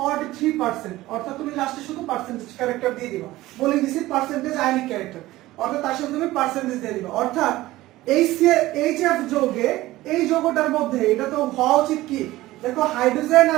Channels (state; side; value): quieter; left; 17.2 dB